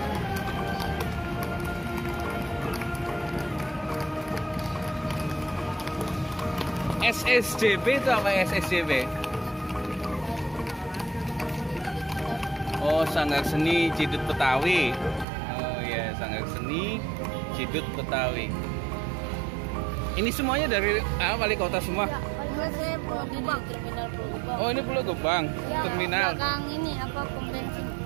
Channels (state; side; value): drops out; left; at 15.2 s